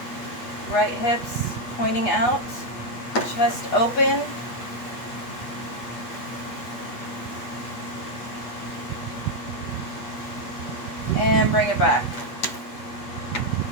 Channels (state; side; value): late; right; 8.2 ms